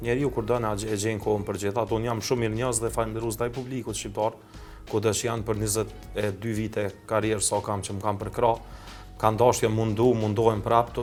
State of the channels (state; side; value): identical; both; correlation 1.00